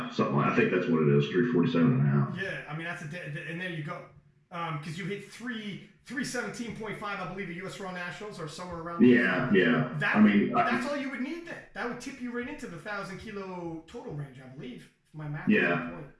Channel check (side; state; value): both; identical; correlation 1.00